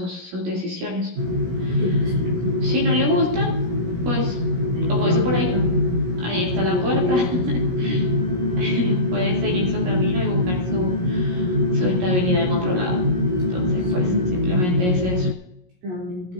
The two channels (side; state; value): left; late; 17 ms